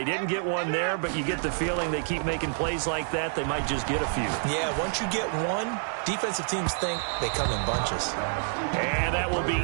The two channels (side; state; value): left; silent; digital silence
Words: didn't get one there, but you get the feeling they keep making plays like that, they might just get a few. Yeah, once you get one, defensive teams think they come in bunches. And that will be